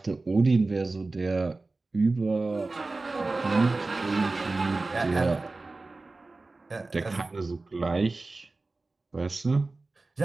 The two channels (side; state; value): left; quieter; 3.4 dB